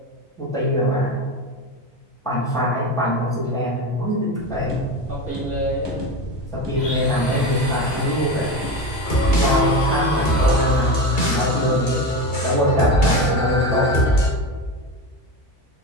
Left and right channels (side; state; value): right; late; 2.3 ms